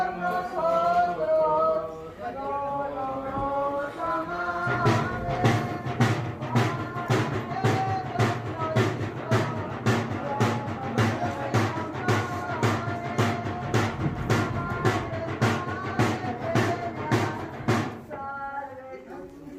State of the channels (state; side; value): identical; both; correlation 1.00